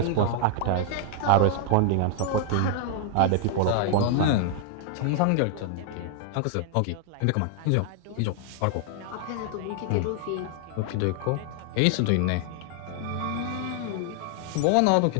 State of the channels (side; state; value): both; different; correlation -0.01